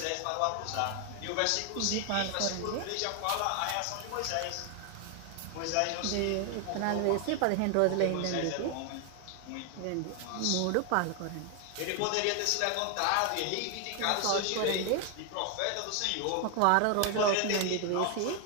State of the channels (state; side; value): different; both; correlation 0.00